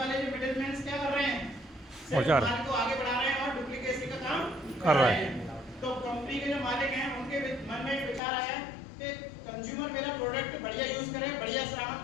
जो मिडिलमैन क्या कर रहे हैं, सिर्फ माल को आगे बढ़ा रहे हैं और डुप्लीकेसी का काम कर रहे हैं। तो कंपनी के जो मालिक हैं उनके मन में विचार आया कि कंज्यूमर मेरा प्रोडक्ट बढ़िया यूज करे, बढ़िया सामान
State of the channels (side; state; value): right; drops out; at 8.2 s